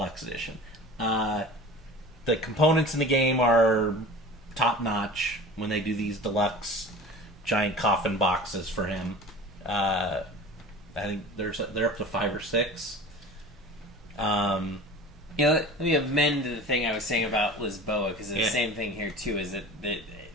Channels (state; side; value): normal; both; correlation 0.38